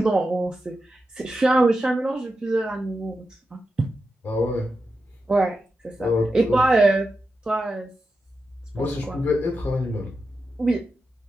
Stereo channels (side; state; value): both; normal; correlation 0.89